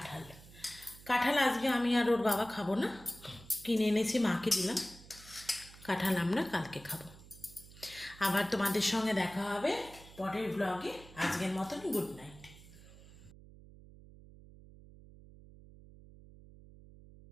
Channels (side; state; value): right; noise; hum, 20 dB below the sound